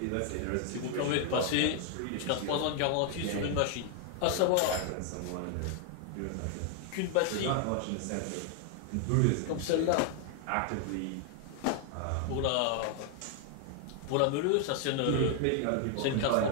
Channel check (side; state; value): both; different; correlation 0.00